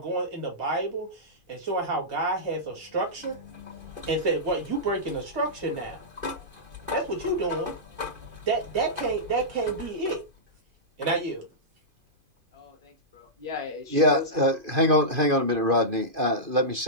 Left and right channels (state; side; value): late; left; 2.5 ms